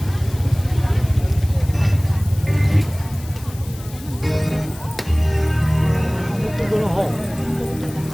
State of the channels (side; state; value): left; noise; hiss, 19 dB below the sound